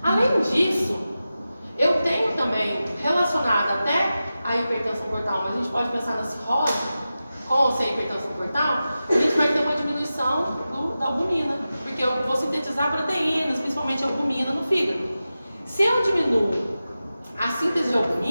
Além disso, eu tenho também relacionado até a hipertensão portal, mas a gente pode pensar na cirrose, com ou sem hipertensão portal, a gente vai ter uma diminuição da albumina, porque eu vou sintetizar proteínas, principalmente albumina no fígado. Se eu diminuo a síntese de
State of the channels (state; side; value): inverted; both; correlation -0.93